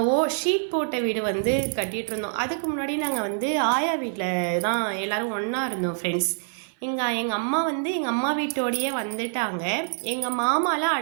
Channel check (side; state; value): left; silent; 56 dB below the other